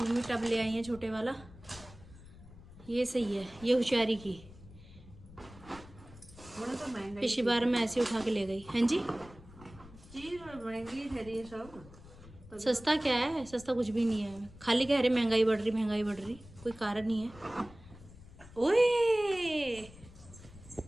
टब ले आई है छोटे वाला। ये सही है, ये होशियारी की। तो महंगा पिछली बार मैं ऐसे उठा के ले गई। हाँ जी, चीज महंगी ठहरी है सब। सस्ता क्या है? सस्ता कुछ भी नहीं है। खाली कह रहे महंगाई बढ़ रही, महंगाई बढ़ रही। कोई कारण नहीं है। ओए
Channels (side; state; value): left; noise; rumble, 19 dB below the sound